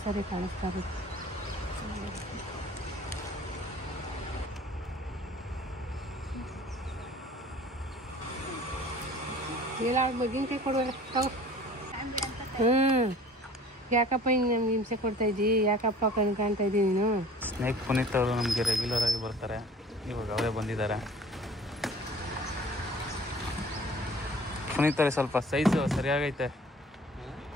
ಸಾರಿ ಕಾಣಿಸ್ತಾ ಇರೋದು. ಇಲ್ಲ ಮಗಿನಕಾಯಿ ಕೊಡುವಲ್ಲ. ಯಾಕಪ್ಪ ಹಿಂಗೆ ನಮ್ಗೆ ಹಿಂಸೆ ಕೊಡ್ತಾ ಇದ್ದಿ, ಯಾಕಪ್ಪ ಕಣ್ಣು ಕಾಣ್ತಾ ಇದ್ದಿ ನೀನು? ಸ್ನೇಕ್ ಪುನೀತ್ ಅವರು ನಮಗೆ ರೆಗ್ಯುಲರ್ ಆಗಿ ಬರ್ತಾರೆ, ಇವಾಗ ಅವರೇ ಬಂದಿದ್ದಾರೆ. ಪುನೀತ್ ಅವ್ರಿಗೆ ಸ್ವಲ್ಪ ಸೈಜು ಸರಿಯಾಗೈತೆ,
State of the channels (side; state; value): both; normal; correlation 0.47